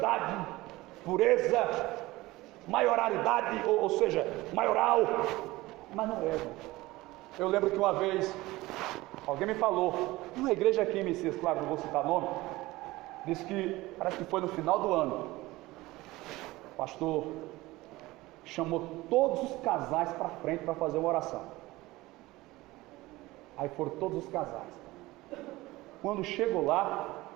pureza, maioridade, ou seja, maioral, mas não é. Eu lembro que uma vez alguém me falou, numa igreja aqui em Messias, claro, não vou citar nome, disse que, parece que foi no final do ano, o pastor chamou todos os casais para frente para fazer uma oração. Aí foram todos os casais. Quando chegou lá,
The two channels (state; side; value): quieter; left; 19.4 dB